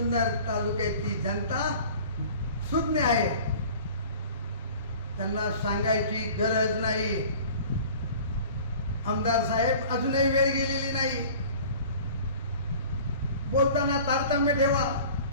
तालुक्याची जनता सुज्ञ आहे. त्यांना सांगायची गरज नाही. आमदार साहेब, अजूनही वेळ गेलेली नाही. बोलताना तारतम्य ठेवा,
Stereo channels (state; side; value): inverted; both; correlation -0.44